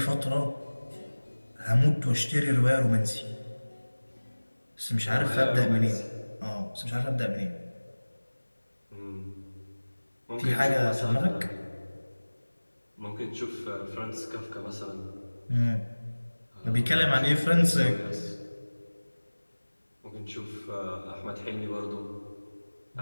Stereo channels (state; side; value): inverted; both; correlation -1.00